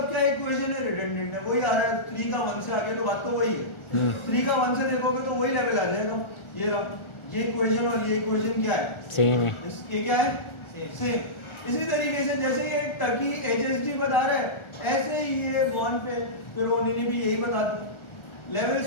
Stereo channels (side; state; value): right; late; 1.4 ms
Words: क्या इक्वेशन है? रिडंडेंट है, वही आ रहा है। 3 का 1 से आगे तो बात तो वही है। 3 का 1 से देखोगे तो वही लेवल आ जाएगा। ये रहा, ये इक्वेशन और ये इक्वेशन क्या है? सेम है। इसके क्या है? सेम। इसी तरीके से जैसे ये टर्की एचएसडी बता रहा है, ऐसे ही ये बॉन्ड पे पेरोनी ने भी यही बता दिया। लेवल्स